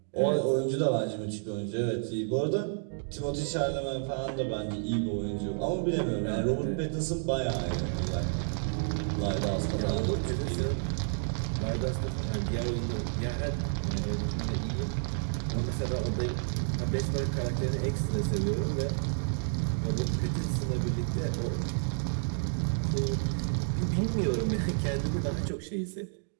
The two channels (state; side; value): silent; left; digital silence